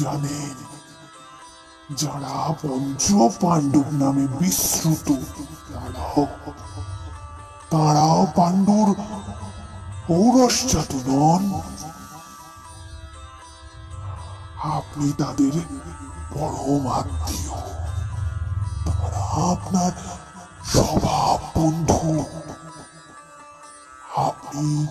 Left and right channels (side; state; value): both; identical; correlation 1.00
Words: জানেন, যারা পঞ্চ পাণ্ডব নামে বিশ্রুত, তারাও পাণ্ডুর ঔরসজাত নন। আপনি তাদের পরম আত্মীয়, তারা আপনার স্বভাব বন্ধু।